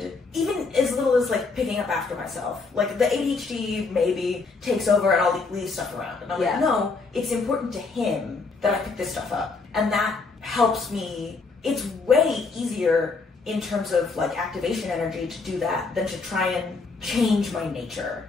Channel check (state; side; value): quieter; right; 4.2 dB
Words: even as little as like picking up after myself. Like the ADHD maybe takes over and I'll leave stuff around, and I'm like, no, it's important to him that I pick this stuff up, and that helps me. It's way easier in terms of like activation energy to do that than to try and change my nature